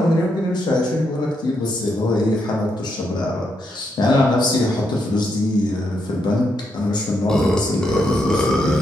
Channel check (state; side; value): normal; both; correlation 0.80